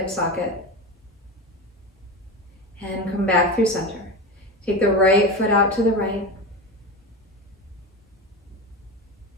socket. And come back through center. Take the right foot out to the right.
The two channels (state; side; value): normal; both; correlation 0.24